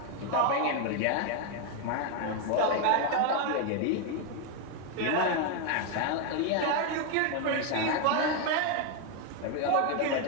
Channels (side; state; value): both; different; correlation 0.01